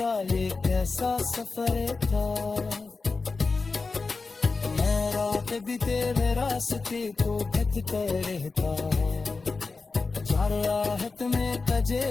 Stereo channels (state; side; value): quieter; right; 4.1 dB